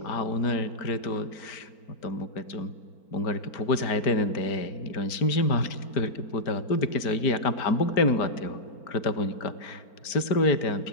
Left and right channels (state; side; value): late; right; 4.4 ms